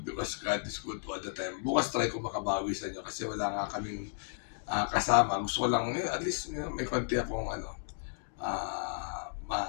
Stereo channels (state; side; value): silent; right; digital silence